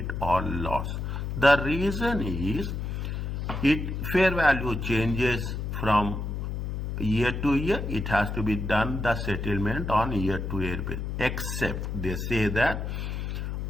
or loss. The reason is fair value changes from year to year. It has to be done the settlement on year-to-year basis. Except they say that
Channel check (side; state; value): left; noise; hum, 4 dB below the sound